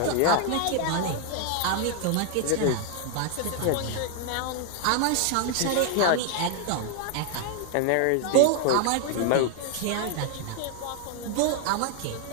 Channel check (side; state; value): both; different; correlation 0.00